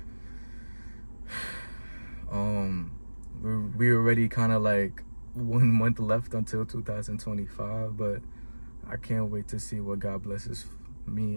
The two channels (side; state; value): both; inverted; correlation -1.00